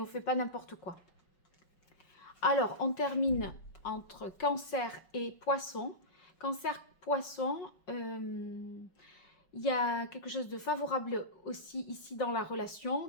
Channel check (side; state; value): right; late; 5.4 ms